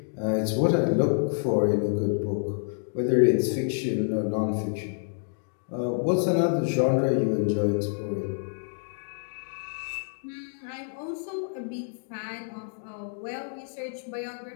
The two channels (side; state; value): right; silent; digital silence